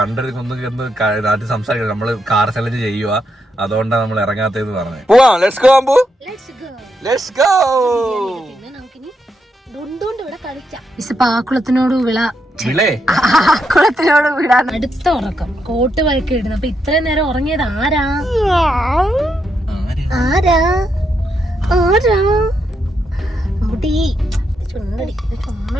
ആദ്യം സംസാരിക്കണം. നമ്മള് കാർ ചലഞ്ച് ചെയ്യുക, അതുകൊണ്ടാണ് നമ്മൾ ഇറങ്ങാത്തതെന്ന് പറഞ്ഞു. പോവാം, let's go Ambu, let's go. ആക്കുളത്തിനോട് വിടാൻ അടുത്ത ഉറക്കം കോട്ട് വഴക്കി ഇടുന്നു. അപ്പൊ ഇത്രയും നേരം ഉറങ്ങിയത് ആരാ? ആരാ ആരാ?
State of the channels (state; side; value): normal; both; correlation 0.81